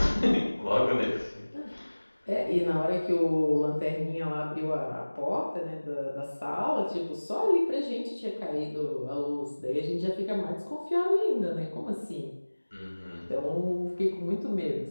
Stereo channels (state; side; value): inverted; both; correlation -1.00